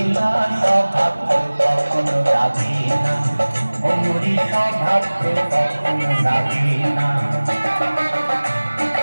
না স্বভাব তো কখনো যাবে না অমরি স্বভাব তো কখনো যাবে না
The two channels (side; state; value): both; inverted; correlation -1.00